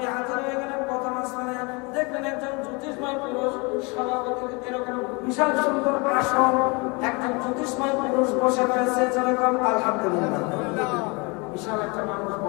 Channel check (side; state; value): right; quieter; 29.0 dB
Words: হাজির হয়ে গেলেন প্রথম আসমানে। দেখলেন একজন জ্যোতিষময় পুরুষ, সভাপতি এরকম বিশাল সুন্দর আসন, একজন জ্যোতিষময় পুরুষ বসে রয়েছে। যেরকম আলহামদুলিল্লাহ, বিশাল একটা মানুষ